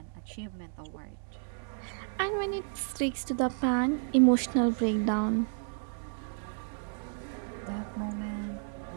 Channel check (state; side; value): silent; left; 57 dB below the other